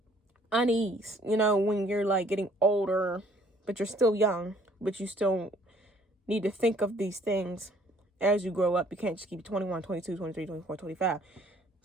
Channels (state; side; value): normal; both; correlation 0.60